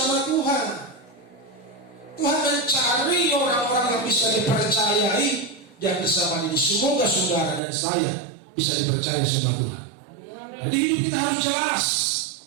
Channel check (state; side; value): drops out; left; at 7.6 s